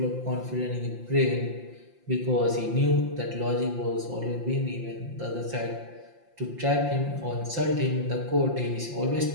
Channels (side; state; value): left; late; 5.7 ms